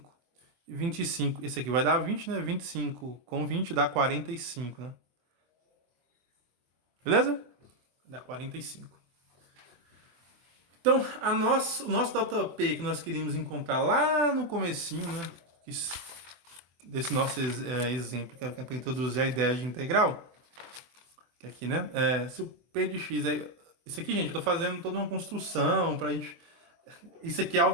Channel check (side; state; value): left; late; 24 ms